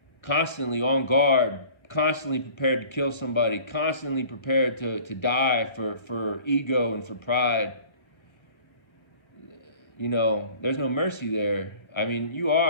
constantly on guard, constantly prepared to kill somebody, constantly prepared to die for ego and for pride, there's no mercy there. I mean, you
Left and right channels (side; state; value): right; late; 1.3 ms